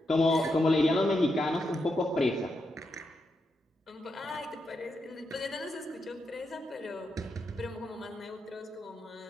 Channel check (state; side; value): normal; both; correlation 0.84